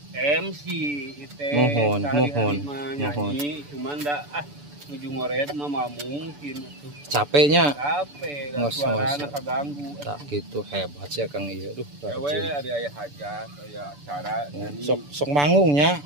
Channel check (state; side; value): late; left; 6.9 ms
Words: MC itu. Mohon. Nyanyi cuman da nuju ngored mah mungkin tuh. Capeknya. Capek, Ngos-ngos. suarana kaganggu. Tak gitu hebat sih Akang ieu. Duh, Ewe rajin. ada aya hajat, aya acara nyanyi. Sok manggungnya.